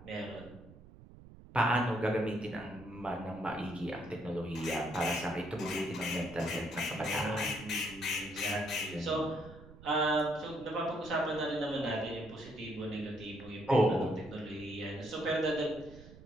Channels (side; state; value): right; noise; rumble, 18 dB below the sound